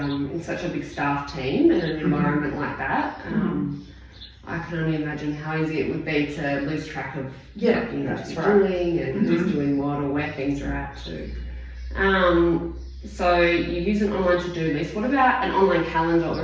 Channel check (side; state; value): both; identical; correlation 1.00